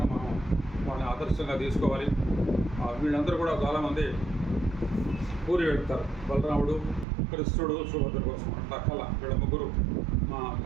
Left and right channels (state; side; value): drops out; left; at 7.1 s